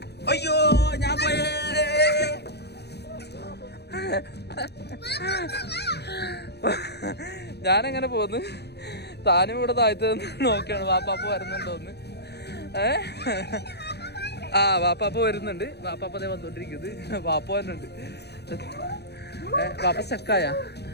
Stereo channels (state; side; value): late; right; 0.48 ms